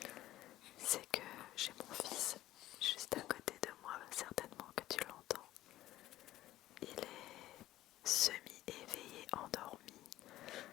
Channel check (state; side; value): quieter; right; 14.9 dB